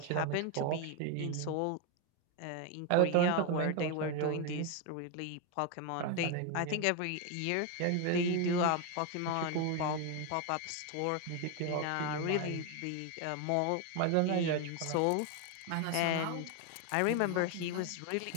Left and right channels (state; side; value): different; both; correlation 0.01